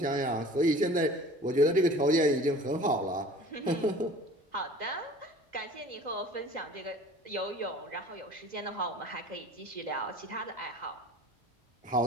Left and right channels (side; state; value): both; normal; correlation 0.44